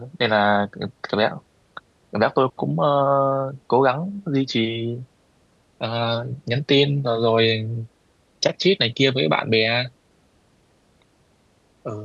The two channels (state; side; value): identical; both; correlation 1.00